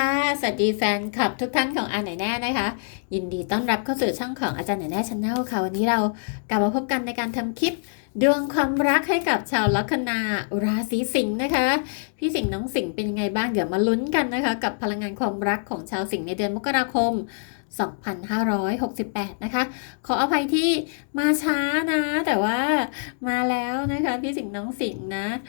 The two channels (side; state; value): right; silent; digital silence